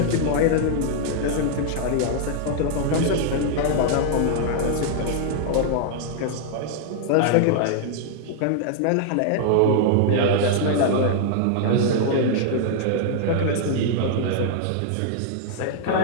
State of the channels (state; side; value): different; both; correlation -0.01